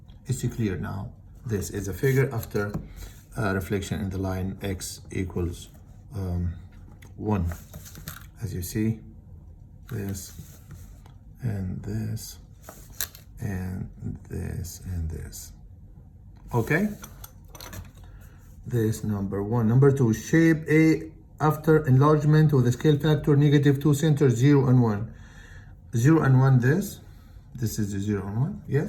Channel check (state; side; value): identical; both; correlation 1.00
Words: It's clear now. This is a figure after reflection in the line x equals 1. As you see, this and this and this and this. Okay, this number 1. Number 2, shape A after enlargement with a scale factor -2, center 0 and 1. 0 and 1, this is the 0 and 1.